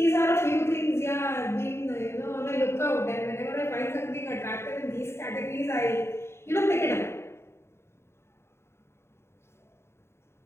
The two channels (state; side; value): late; right; 0.12 ms